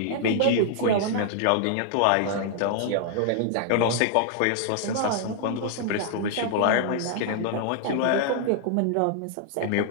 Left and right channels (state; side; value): different; both; correlation -0.01